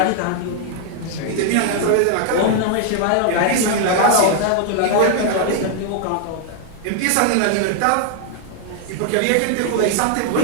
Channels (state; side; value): different; both; correlation 0.00